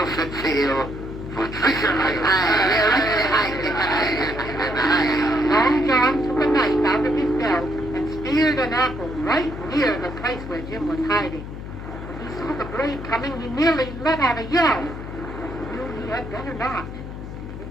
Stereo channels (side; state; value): left; noise; hum, 10 dB below the sound